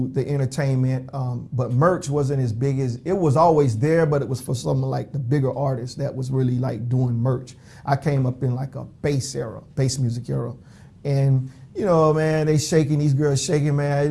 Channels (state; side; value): identical; both; correlation 1.00